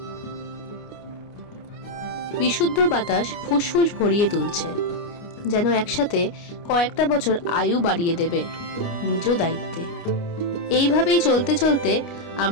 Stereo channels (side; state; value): right; late; 29 ms